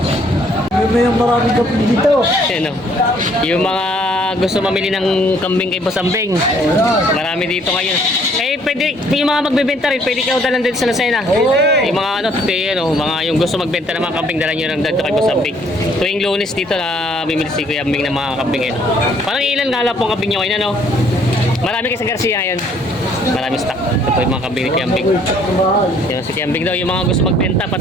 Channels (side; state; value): both; normal; correlation 0.63